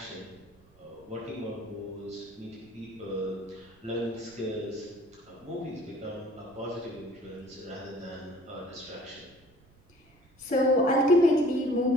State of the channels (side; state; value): right; noise; rumble, 29 dB below the sound